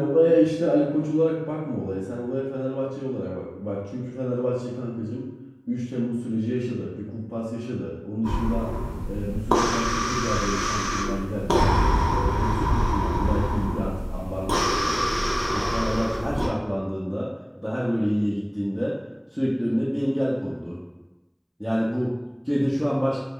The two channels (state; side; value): identical; both; correlation 1.00